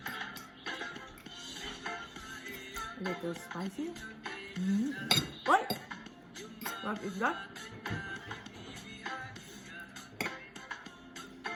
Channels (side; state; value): both; identical; correlation 1.00